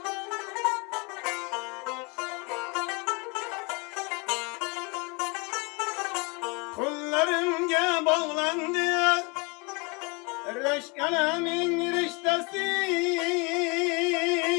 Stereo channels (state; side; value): quieter; right; 29.9 dB